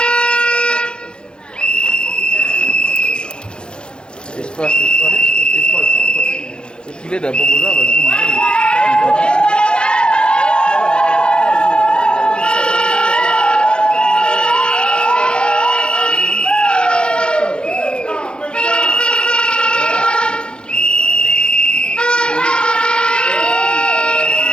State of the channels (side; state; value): right; late; 0.051 ms